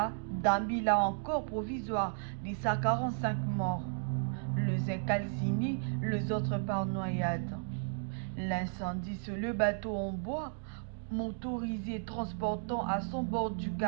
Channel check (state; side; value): silent; left; digital silence